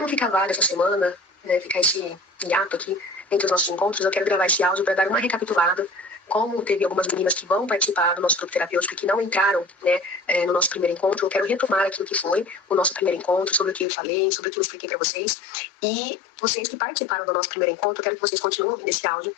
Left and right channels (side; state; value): right; drops out; at 13.9 s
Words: ficar vaga essa semana, né, ficar esse hiato aqui entre os nossos encontros, eu quero gravar esse áudio para dar uma recapitulada. Como teve algumas meninas que vão participar do nosso grupo terapêutico e que não entraram, né, no nosso primeiro encontro, eu quero retomar aquilo que foi o nosso primeiro encontro, sobre o que eu falei, sobre o que eu expliquei para vocês. E vocês que participaram do nosso primeiro encontro, eu quero que vocês continuem nesse áudio,